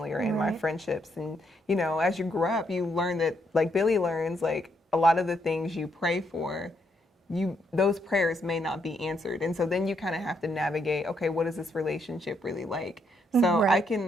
or in my friendships. And as you grow up, you learn that, like Billy learns, like a lot of the things you pray for, those prayers may not be answered. And so then you kind of have to navigate, okay, what is this relationship really like? So I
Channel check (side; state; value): both; normal; correlation 0.75